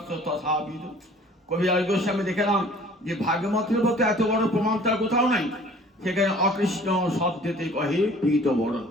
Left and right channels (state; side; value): normal; both; correlation 0.50